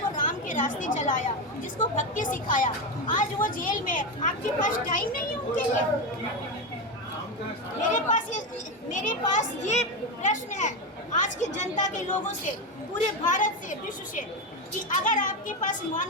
को राम के रास्ते चलाया, जिसको भक्ति सिखाया, आज वो जेल में। आपके पास टाइम नहीं है उनके लिए? मेरे पास ये प्रश्न है आज की जनता के लोगों से, पूरे भारत से, विश्व से, कि अगर आपके पास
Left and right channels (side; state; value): both; normal; correlation 0.13